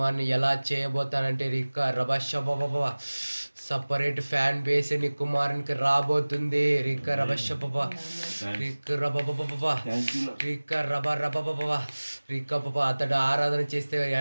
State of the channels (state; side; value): inverted; both; correlation -1.00